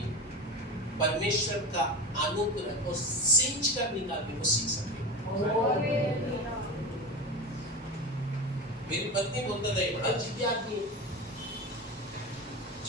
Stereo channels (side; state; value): both; normal; correlation 0.25